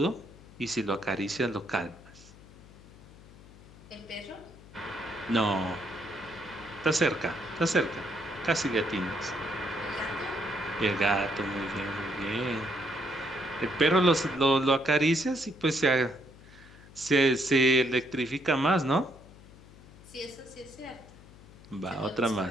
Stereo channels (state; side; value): noise; left; hum, 21 dB below the sound